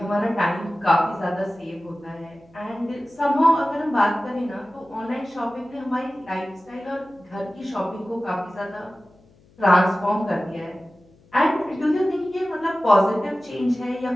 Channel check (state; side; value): noise; left; hum, 29 dB below the sound